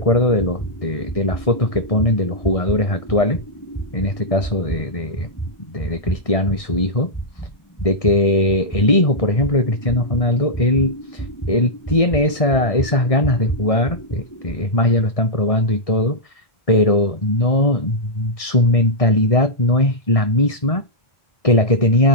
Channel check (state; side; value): late; right; 1.6 ms